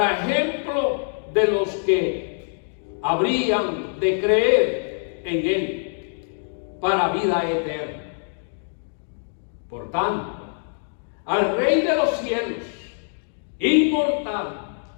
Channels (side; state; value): right; silent; digital silence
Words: ejemplo de los que habrían de creer en él para vida eterna. Por tanto, al Rey de los cielos, inmortal,